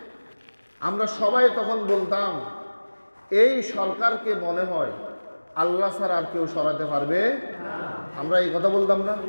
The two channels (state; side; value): inverted; both; correlation -1.00